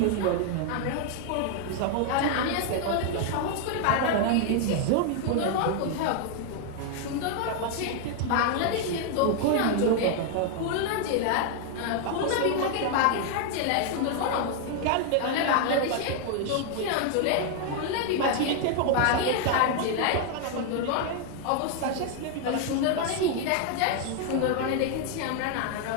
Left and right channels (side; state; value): both; different; correlation 0.00